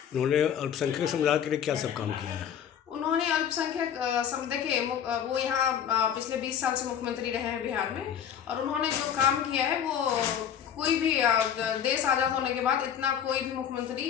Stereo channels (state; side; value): quieter; right; 8.8 dB